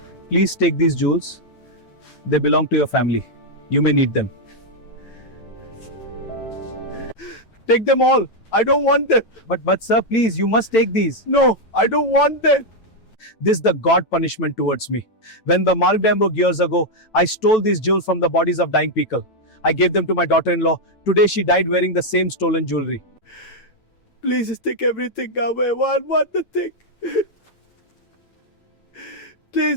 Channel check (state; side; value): late; right; 9.0 ms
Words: please take these jewels. They belong to your family. You may need them. Take them all. I don't want them. But sir, please, you must take these. No, I don't want them. This is the God punishment towards me. When the Malmdamburg years ago, I stole these jewels from the bodies of dying people. I gave them to my daughter-in-law. Today she died wearing the same stolen jewelry. Please just take everything away. I want the thing.